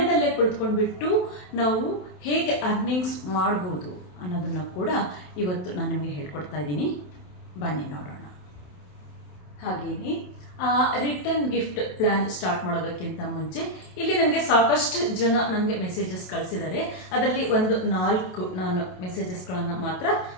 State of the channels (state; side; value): late; right; 27 ms